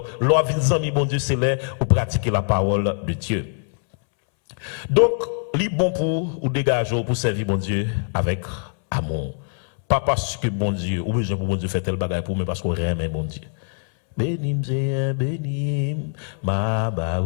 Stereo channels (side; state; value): right; silent; 63 dB below the other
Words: l'on vient amis bon Dieu, c'est là où pratiquer la parole de Dieu. Donc, li bon pour ou dégager pour servir bon Dieu avec amour. Pas parce que bon Dieu, ou besoin pour bon Dieu faire tel bagage pour, mais parce qu'on aime bon Dieu. Bénim, Seigneur, bénim, ma ba